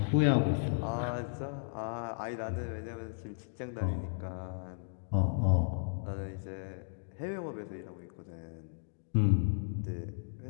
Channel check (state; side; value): silent; right; digital silence